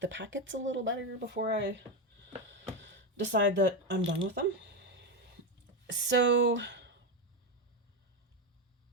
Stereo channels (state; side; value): normal; both; correlation 0.11